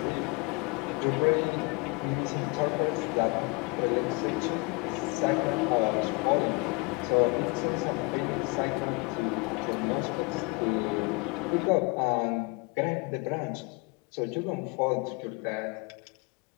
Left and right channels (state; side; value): quieter; right; 28.2 dB